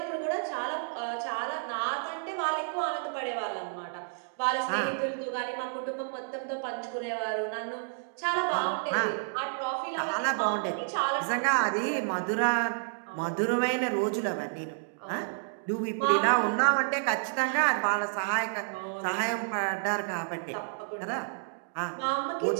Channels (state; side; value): silent; left; digital silence